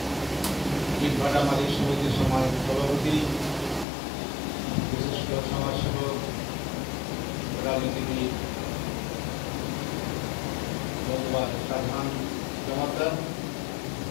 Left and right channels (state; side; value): drops out; right; at 3.9 s